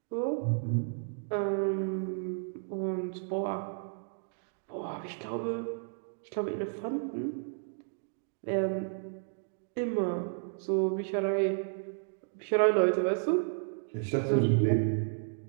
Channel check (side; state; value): left; silent; digital silence